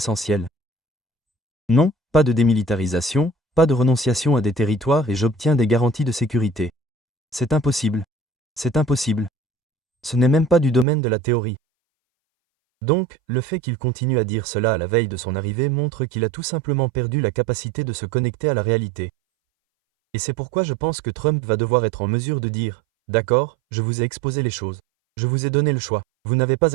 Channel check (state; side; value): drops out; left; at 10.9 s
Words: Non, pas de démilitarisation, pas de renonciation à des territoires et j'obtiens des garanties de sécurité. C'est impossible. C'est impossible. Ce n'est même pas du domaine de la théorie. Donc, le fait qu'il continue à dire cela à la veille de son arrivée montre qu'il a tout simplement perdu la capacité de se connecter à la réalité. Et c'est pourquoi je pense que Trump va devoir être en mesure de dire « D'accord, je vous ai exposé les choses. Je vous ai donné le choix. Vous n'avez